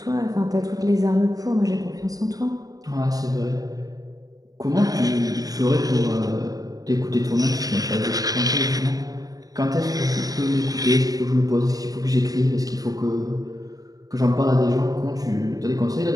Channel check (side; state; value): left; late; 0.18 ms